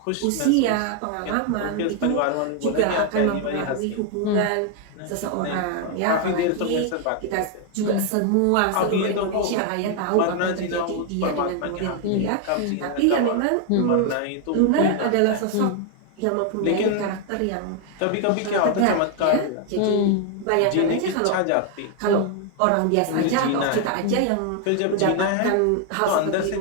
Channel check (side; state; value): both; different; correlation 0.00